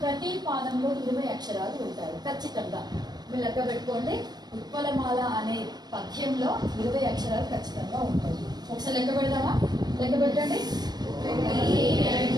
ప్రతి పాదంలో 20 అక్షరాలు ఉంటాయి ఖచ్చితంగా. మీరు లెక్క పెట్టుకోండి. ఉత్పలమాల అనే పద్యంలో 20 అక్షరాలు ఖచ్చితంగా ఉంటాయి. ఒకసారి లెక్క పెడదామా? లెక్క పెట్టండి. 1,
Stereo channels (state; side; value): late; left; 0.19 ms